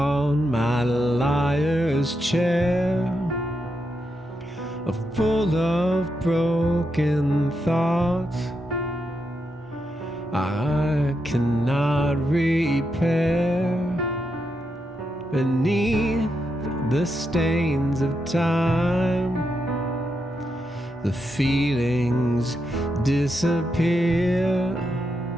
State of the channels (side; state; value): both; normal; correlation 0.84